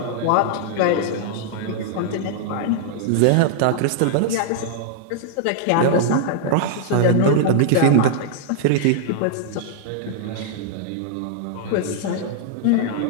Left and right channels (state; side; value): different; both; correlation -0.01